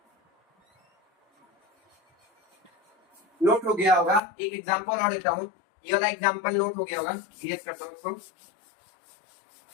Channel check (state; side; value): drops out; right; at 4.2 s